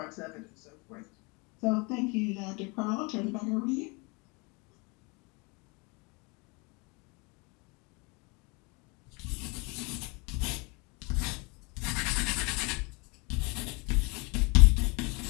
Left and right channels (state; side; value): quieter; right; 29.3 dB